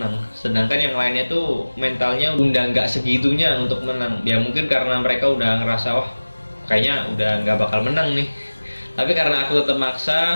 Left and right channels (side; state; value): both; inverted; correlation -1.00